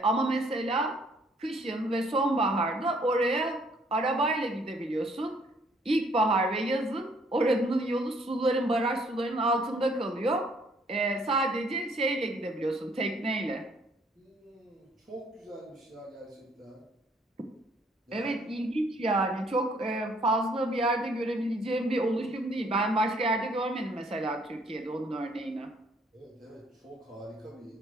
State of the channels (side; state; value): both; normal; correlation 0.64